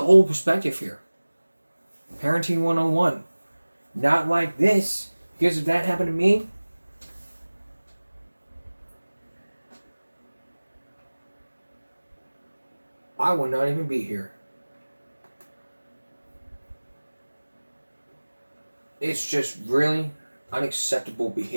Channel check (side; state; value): both; inverted; correlation -1.00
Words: perspective here. Parenting 101. Not like this, because if that happened to me, I would not even be here. It's just really unacceptable